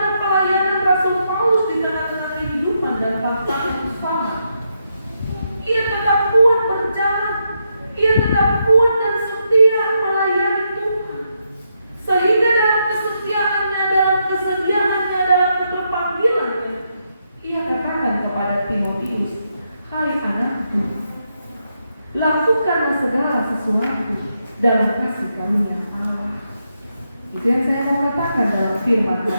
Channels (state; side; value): inverted; both; correlation -0.81